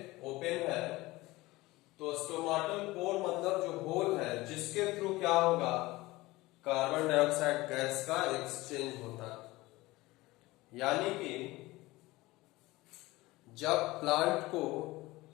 ओपन है। तो स्टोमाटल पोर मतलब जो होल है, जिसके थ्रू क्या होगा? कार्बन डाइऑक्साइड गैस का एक्सचेंज होता है। यानी कि जब प्लांट को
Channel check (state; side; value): quieter; right; 19.9 dB